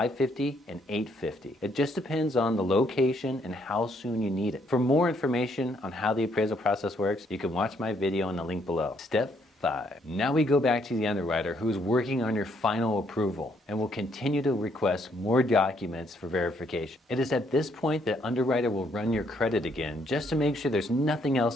and $850. It just depends on the location and how soon you need it. For more information on how the appraisal process works, you can watch my video in the link below. Step 5. Now we go back to the underwriter who is working on your final approval and will continue to request more documents for verification. It is at this point that underwriter will run your credit again just to make sure there's nothing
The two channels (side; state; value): both; normal; correlation 0.70